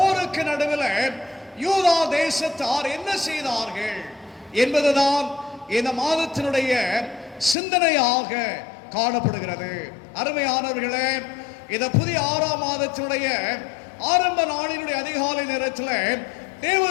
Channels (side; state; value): right; drops out; at 7.6 s